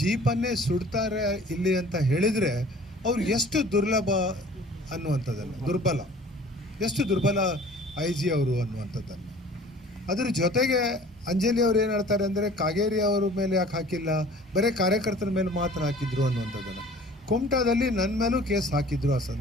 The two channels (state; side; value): normal; both; correlation 0.48